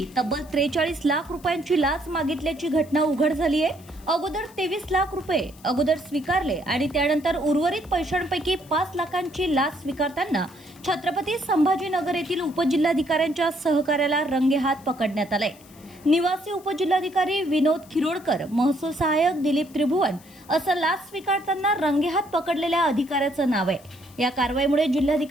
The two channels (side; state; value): left; noise; hiss, 25 dB below the sound